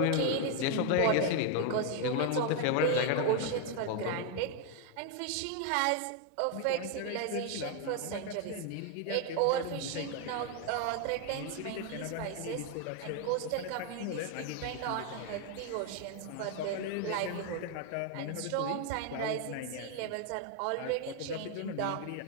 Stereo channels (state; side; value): different; both; correlation 0.01